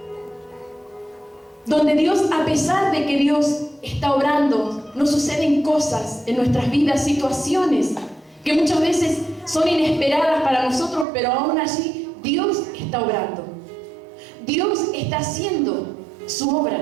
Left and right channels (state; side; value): drops out; left; at 11.1 s